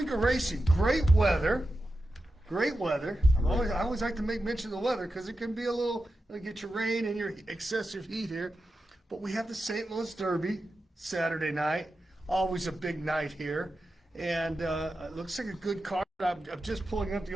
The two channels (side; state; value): both; normal; correlation 0.91